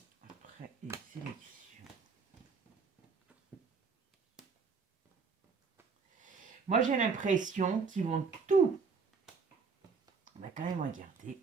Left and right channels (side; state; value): left; quieter; 5.1 dB